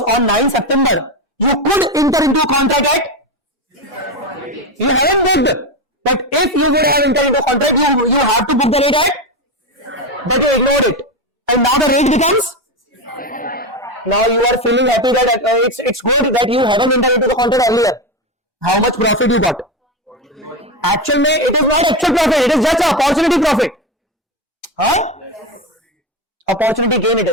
on 9 September you could enter into a contract at, you haven't booked, but if you would have entered into a contract, you have to book the rate at, but you ignored it, and now the rate becomes, now you are feeling happy that it's good that you haven't entered into the contract earlier. How much profit you got? Actual mein, it is not actual profit, it is just an opportunity profit. Huh? Opportunity gain it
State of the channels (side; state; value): both; normal; correlation 0.15